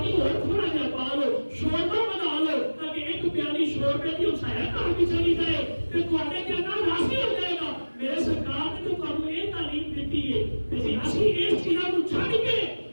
اور تھوڑا جہا پا لو, شوربہ بنا لو تاکہ ایک پیالی شوربے کی سایہ کار بھی چلی جائے تو تھوڑے کے اندر راضی ہو جائے گا. میرے سرکار نے تو تمہیں یہ تعلیم دیتی ہے کہ اسی اس چیزوں کو چھڑ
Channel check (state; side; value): inverted; both; correlation -1.00